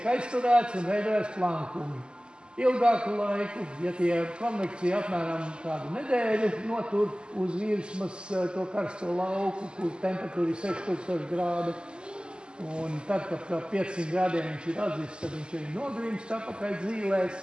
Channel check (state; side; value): late; left; 0.049 ms